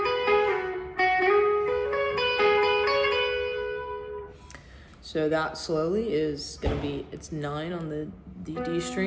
So that slowly is gonna be, it's 9 on the D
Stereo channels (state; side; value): identical; both; correlation 1.00